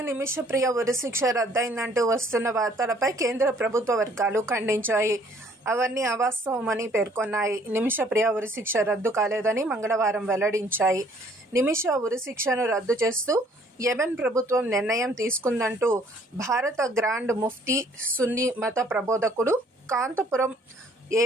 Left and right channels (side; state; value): both; normal; correlation 0.60